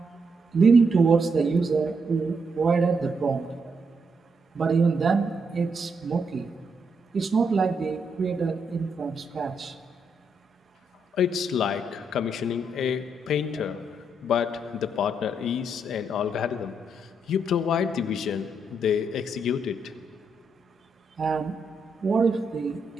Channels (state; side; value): normal; both; correlation 0.78